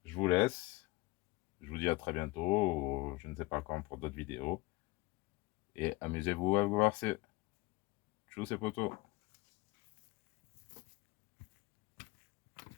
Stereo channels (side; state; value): right; quieter; 21.0 dB